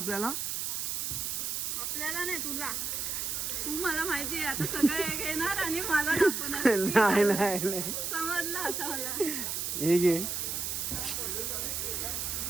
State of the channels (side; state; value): right; noise; hiss, 2 dB below the sound